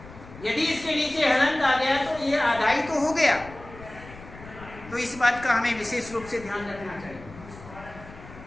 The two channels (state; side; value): noise; left; rumble, 17 dB below the sound